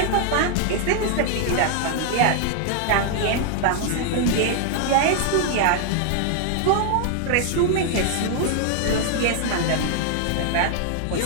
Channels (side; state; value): both; different; correlation 0.00